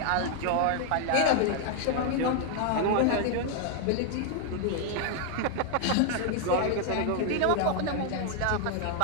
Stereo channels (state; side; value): different; both; correlation 0.00